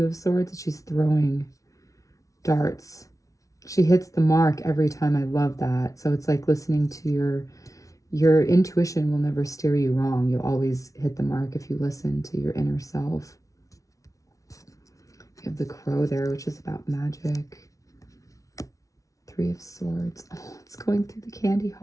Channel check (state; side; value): late; right; 0.16 ms